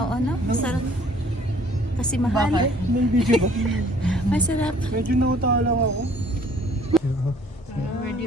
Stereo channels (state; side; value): normal; both; correlation 0.57